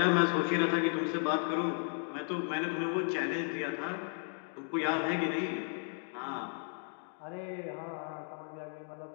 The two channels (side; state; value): right; silent; 55 dB below the other